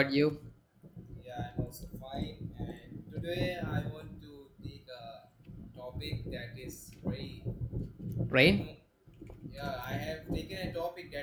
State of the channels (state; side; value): identical; both; correlation 1.00